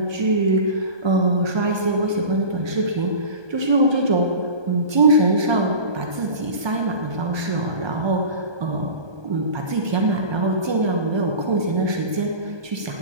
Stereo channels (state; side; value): late; left; 1.2 ms